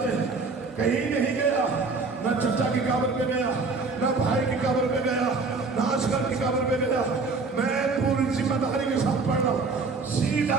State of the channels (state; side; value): quieter; left; 4.1 dB